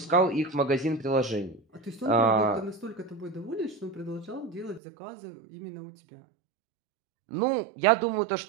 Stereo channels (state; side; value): drops out; left; at 4.8 s